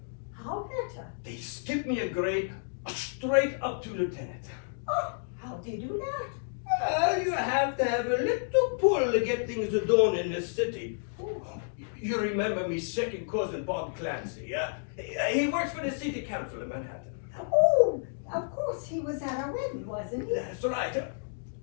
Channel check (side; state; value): right; silent; digital silence